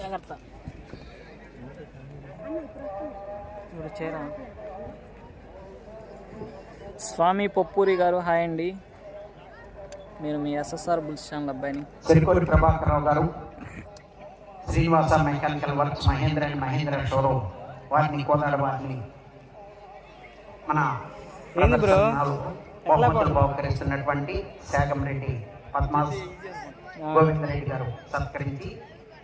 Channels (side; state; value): both; identical; correlation 1.00